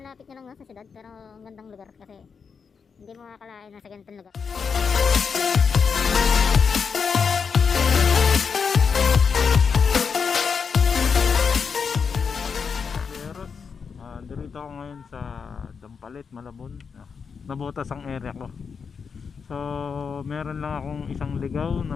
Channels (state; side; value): quieter; right; 5.9 dB